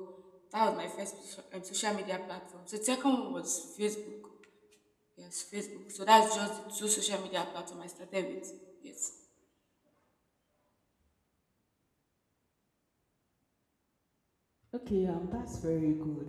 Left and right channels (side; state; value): both; identical; correlation 1.00